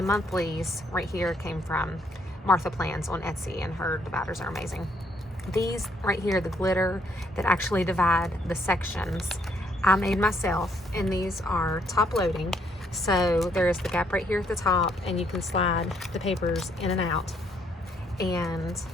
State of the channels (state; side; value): normal; both; correlation 0.69